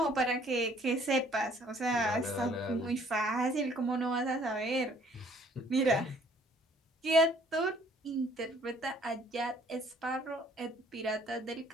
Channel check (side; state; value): both; normal; correlation 0.59